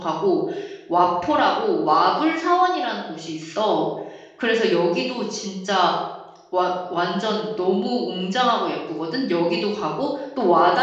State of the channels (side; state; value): both; identical; correlation 1.00